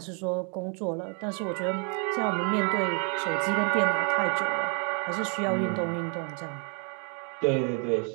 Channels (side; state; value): left; quieter; 39.8 dB